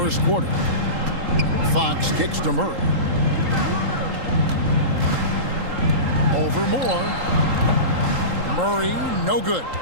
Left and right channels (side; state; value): left; late; 3.8 ms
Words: quarter. Fox kicks to Murray. Over Moore. Murray, no good.